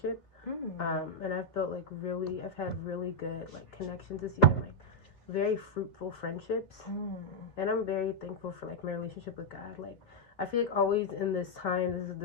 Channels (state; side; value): late; right; 2.3 ms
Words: And I've built I've had really good connections this year, and very fruitful friendships. And I'm very thankful for my relationship with God. I feel always in this is